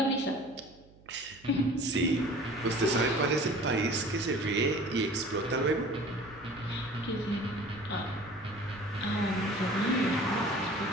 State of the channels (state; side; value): noise; right; hum, 25 dB below the sound